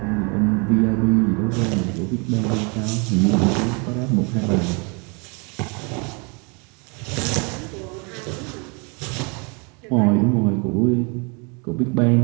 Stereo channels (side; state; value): left; quieter; 32.3 dB